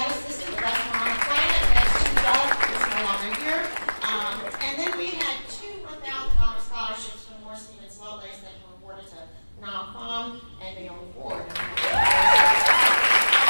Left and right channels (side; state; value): both; inverted; correlation -1.00